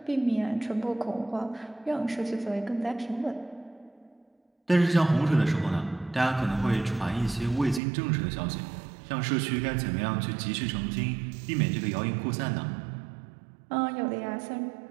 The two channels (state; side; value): drops out; left; at 7.8 s